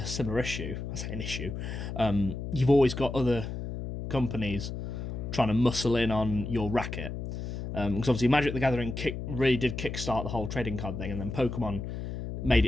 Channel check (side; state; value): left; noise; hum, 6 dB below the sound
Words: similar issue. I say an issue. You've always got other companies trying to muscle in on your racket. Because obviously Magic the Gathering really did kickstart the whole trading card thing, and then Pokemon made